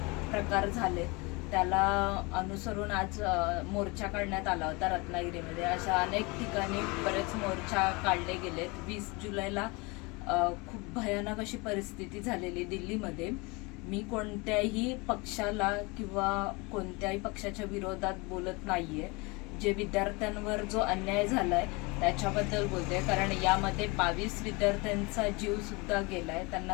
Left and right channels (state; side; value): quieter; right; 26.8 dB